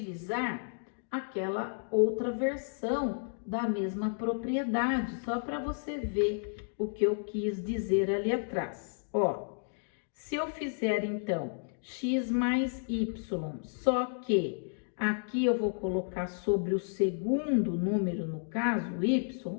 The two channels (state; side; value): silent; right; digital silence